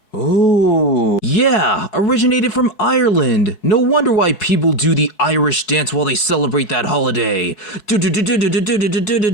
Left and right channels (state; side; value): late; right; 4.7 ms